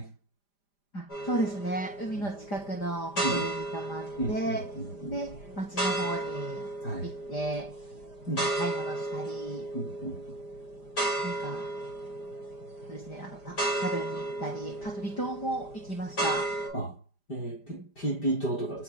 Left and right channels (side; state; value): right; late; 5.0 ms